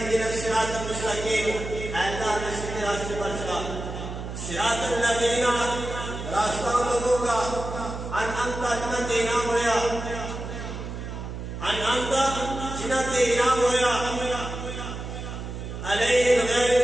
الصراط المستقیم، اے اللہ ہمیں سیدھے راستے پر چلا۔ صراط الذین، راستہ لوگوں کا، انعمت جنہ تے انعام ہویا، انعمت جنہ تے انعام ہویا، علیہم غیر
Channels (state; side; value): noise; right; hum, 7 dB below the sound